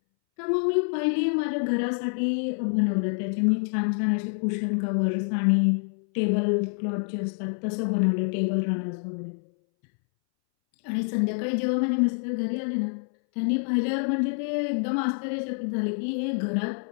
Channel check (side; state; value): right; silent; 61 dB below the other